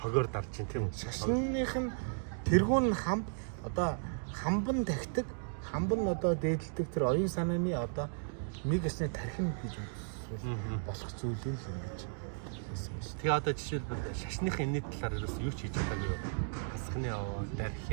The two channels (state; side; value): silent; left; digital silence